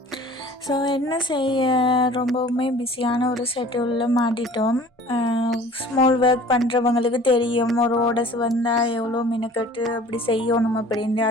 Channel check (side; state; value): both; normal; correlation 0.47